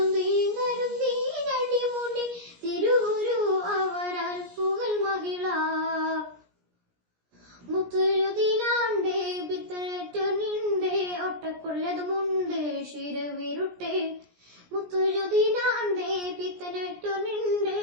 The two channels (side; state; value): left; late; 17 ms